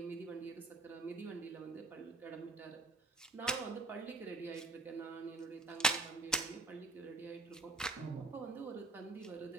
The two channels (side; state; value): left; quieter; 3.0 dB